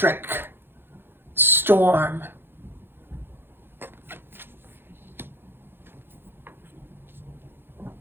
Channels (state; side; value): late; left; 0.10 ms